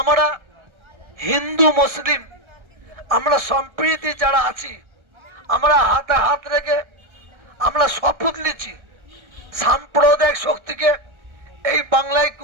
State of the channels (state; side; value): late; left; 1.3 ms